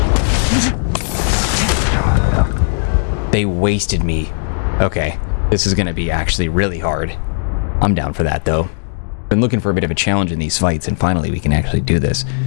They wasted me. Okay, this is gonna be actually really hard. I'm down for that, though. Been looking for a bit of a challenge in these fights, and finally we can actually do this.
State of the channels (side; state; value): right; silent; digital silence